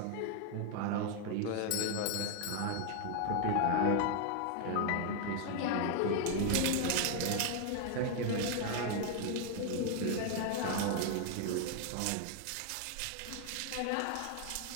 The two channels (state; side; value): different; both; correlation 0.01